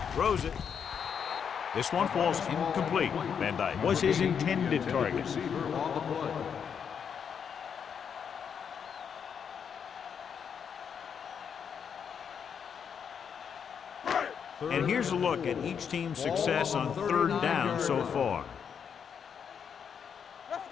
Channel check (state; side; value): quieter; right; 7.3 dB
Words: Throws it. This one falls incomplete. Van Dyke was his intended target. Receiver on the play. And here's a look at each team's success on 3rd down so far. Let's